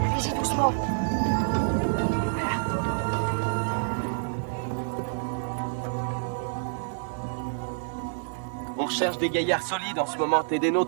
Allez-y doucement. On recherche des gaillards solides en ce moment. T'es des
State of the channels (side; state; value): left; silent; digital silence